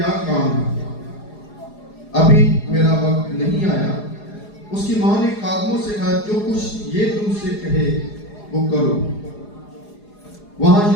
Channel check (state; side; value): late; right; 4.8 ms